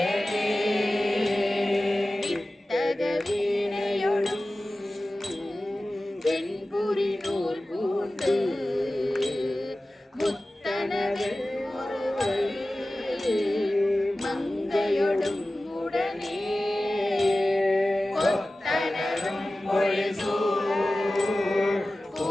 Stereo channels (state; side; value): normal; both; correlation 0.96